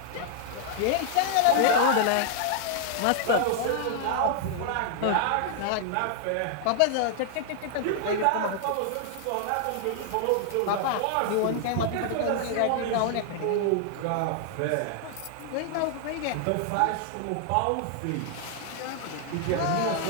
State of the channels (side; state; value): both; different; correlation 0.00